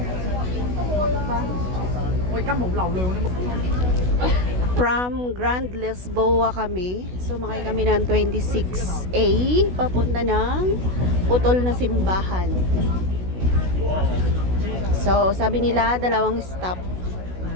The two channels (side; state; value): left; late; 16 ms